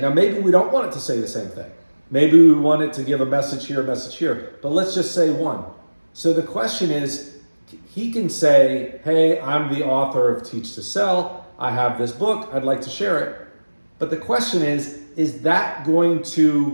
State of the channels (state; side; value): inverted; both; correlation -1.00